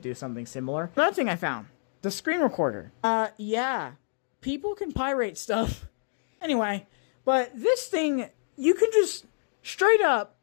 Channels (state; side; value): silent; right; digital silence